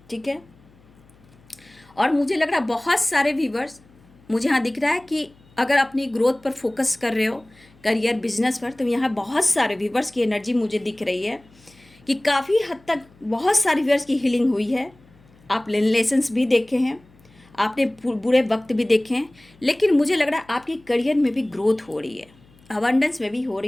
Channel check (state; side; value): noise; left; hum, 29 dB below the sound